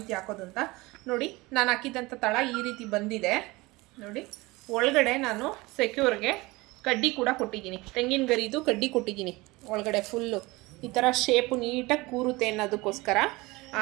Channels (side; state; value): left; quieter; 22.2 dB